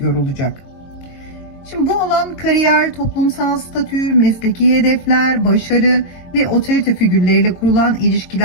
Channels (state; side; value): late; right; 22 ms